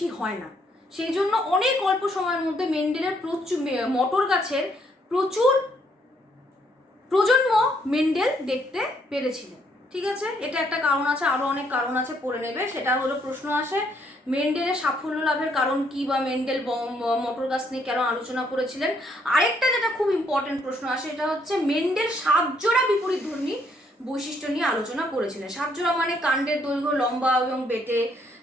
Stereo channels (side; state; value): both; normal; correlation 0.70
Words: হয় না, সেই জন্য অনেক অল্প সময়ের মধ্যে মেন্ডেলের মটর গাছের প্রচুর প্রজন্ম মেন্ডেল দেখতে পেরেছিলেন। ঠিক আছে, এটা একটা কারণ আছে, আরো অনেক কারণ আছে, পড়ে নেবে। সেটা হলো প্রশ্ন আসে মেন্ডেলের সাফল্য লাভের কারণ কি, বা মেন্ডেল মটর গাছ নিয়ে কেন আলোচনা করেছিলেন। আরেকটা যেটা খুব ইম্পর্টেন্ট প্রশ্ন আসে, এটা হচ্ছে মেন্ডেল 7 জোড়া বিপরীতধর্মী বৈশিষ্ট্য নিয়ে আলোচনা করেছিলেন। 7 জোড়া মানে কাণ্ডের দৈর্ঘ্য লম্বা এবং বেটে,